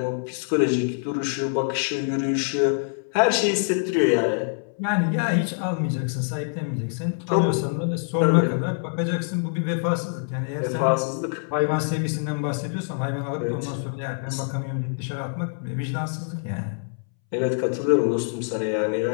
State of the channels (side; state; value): right; silent; 62 dB below the other